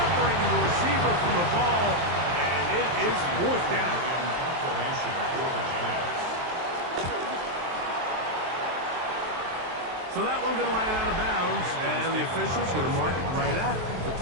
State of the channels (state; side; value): late; left; 23 ms